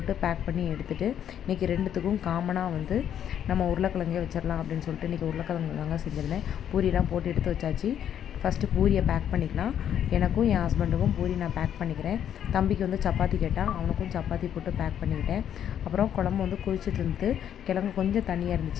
பேக் பண்ணி எடுத்துகிட்டு இன்றைக்கி ரெண்டுத்துக்கும் காமனாக நம்ம உருளைக்கிழங்கே வச்சிடலாம் அப்படின்னு சொல்லிட்டு இன்றைக்கி உருளைக்கிழங்கு தாங்க செஞ்சுருந்தேன். பூரியெலாம் போட்டு எடுத்து வச்சாச்சு. ஃபஸ்ட்டு பூரியை பேக் பண்ணிக்கலாம். எனக்கும் என் ஹஸ்பண்டுக்கும் பூரி நான் பேக் பண்ணிக்கிறேன். தம்பிக்கு சப்பாத்தி கேட்டால் அவனுக்கும் சப்பாத்தி போட்டு பேக் பண்ணிக்கிட்டேன். அப்புறம் குழம்பு கொதிச்சுட்டு இருந்தது. கிழங்கு கொஞ்சம் தண்ணியாக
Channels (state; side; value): quieter; right; 9.7 dB